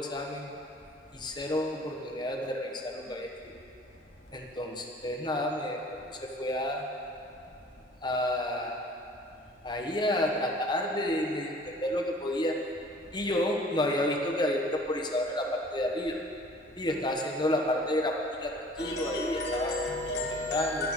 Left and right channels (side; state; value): both; normal; correlation 0.50